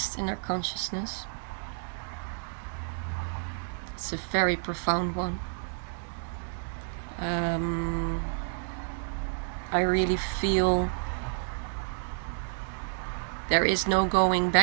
in our consciousness. It's a very profound one. I really feel there is no going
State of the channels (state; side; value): silent; left; 58 dB below the other